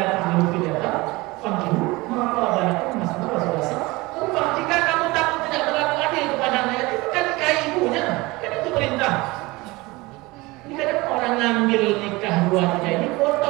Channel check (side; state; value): left; quieter; 22.3 dB